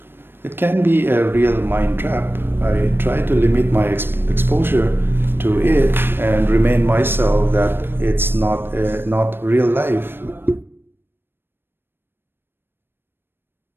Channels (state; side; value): late; left; 0.10 ms